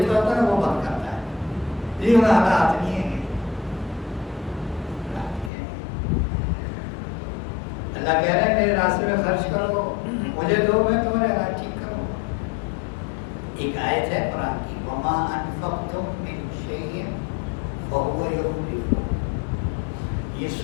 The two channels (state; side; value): drops out; right; at 5.5 s